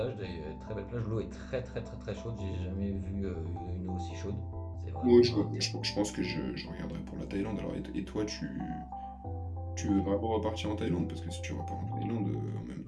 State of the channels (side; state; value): both; identical; correlation 1.00